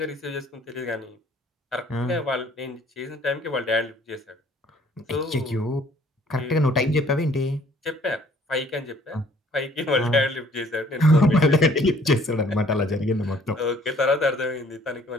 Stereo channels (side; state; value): both; normal; correlation 0.58